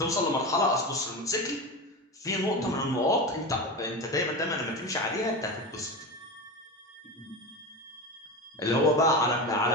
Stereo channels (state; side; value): normal; both; correlation 0.23